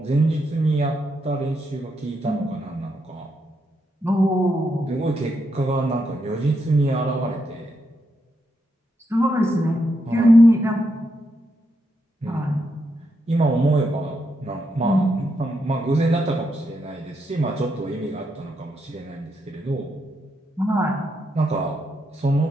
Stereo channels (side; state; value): both; normal; correlation 0.81